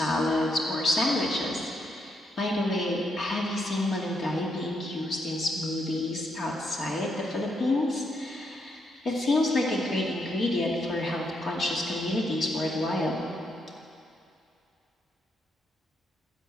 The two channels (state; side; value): normal; both; correlation 0.78